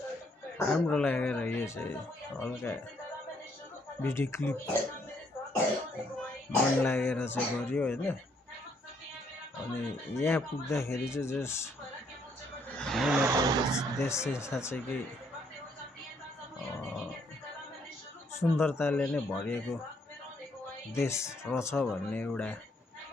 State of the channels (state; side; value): normal; both; correlation 0.69